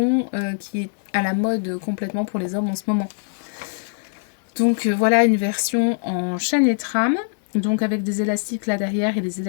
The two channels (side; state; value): right; silent; digital silence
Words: qui est à la mode complètement pour les hommes en ce moment. Donc voilà une version en chaînette rame, donc avec des élastiques là derrière et des